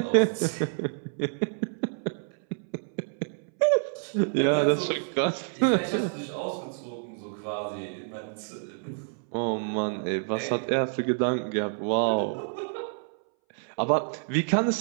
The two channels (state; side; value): silent; left; 59 dB below the other